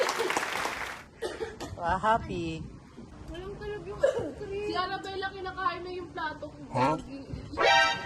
Happy. Walang talab yung ice cream. Si Arabella kinakain na yung plato ko. Huh?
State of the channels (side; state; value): both; identical; correlation 1.00